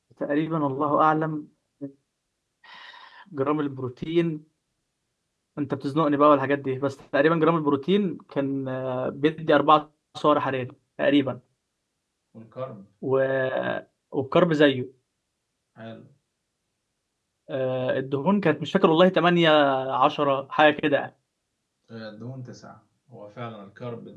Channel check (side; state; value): both; identical; correlation 1.00